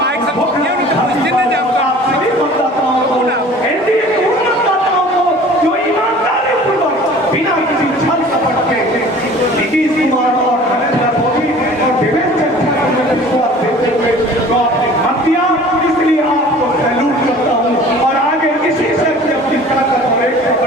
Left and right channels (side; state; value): both; normal; correlation 0.46